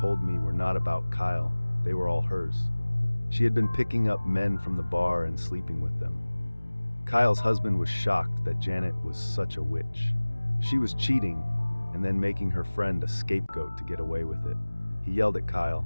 me were not about Kyle, they were all hers. She had been picking up men from the bar and sleeping with them. Kyle's husband was shocked that Janet was such a witch. She was cheating and then making her friend a scapegoat to get away with it. He yelled at Kyle,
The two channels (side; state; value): both; inverted; correlation -1.00